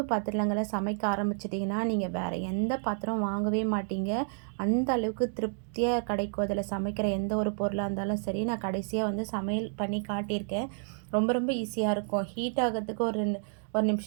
பாத்திரங்களை சமைக்க ஆரம்பிச்சிட்டிங்கன்னா நீங்கள் வேறு எந்த பாத்திரம் வாங்கவே மாட்டீங்க. அந்த அளவுக்கு திருப்தியாக கிடைக்கும் அதில் சமைக்கிற எந்த ஒரு பொருளாக இருந்தாலும் சரி. நான் கடைசியாக வந்து சமையல் பண்ணி காட்டியிருக்கேன். ரொம்ப ரொம்ப ஈஸியாக இருக்கும். ஹீட் ஆகிறதுக்கு ஒரு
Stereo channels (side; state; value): left; silent; digital silence